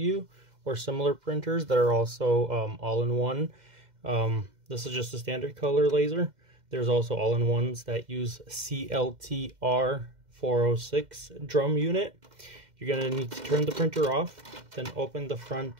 or similar printers that are also all-in-one, this is just a standard color laser. There's also all-in-ones that use CLT-R406 Drum unit. You're going to need to turn the printer off, then open the front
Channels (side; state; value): left; late; 2.1 ms